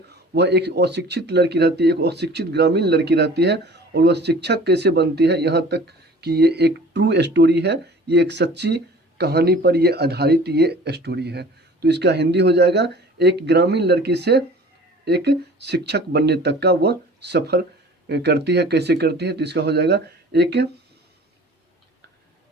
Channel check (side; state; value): both; normal; correlation 0.46